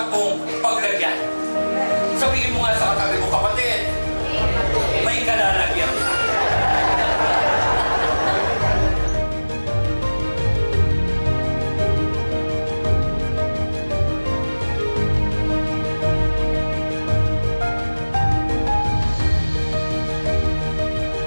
mong paglagyan. Sabihin mo nga sa katabi mo, kapatid, may kalalagyan ka.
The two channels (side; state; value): both; inverted; correlation -1.00